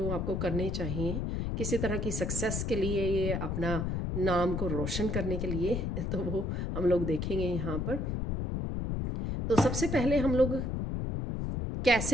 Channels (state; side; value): noise; left; rumble, 1 dB below the sound